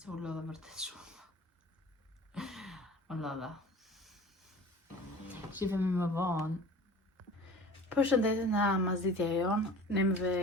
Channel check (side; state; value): both; normal; correlation 0.42